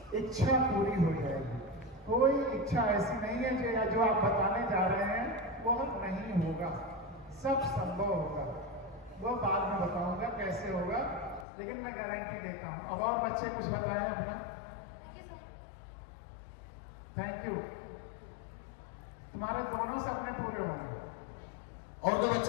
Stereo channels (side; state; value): right; drops out; at 11.5 s